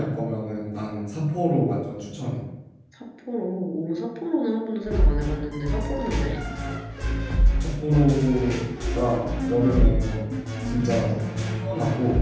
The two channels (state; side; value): identical; both; correlation 1.00